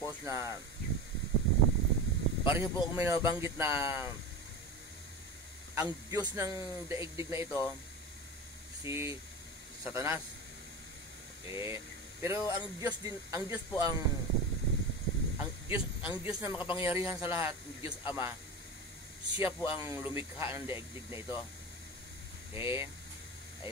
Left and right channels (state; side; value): normal; both; correlation 0.26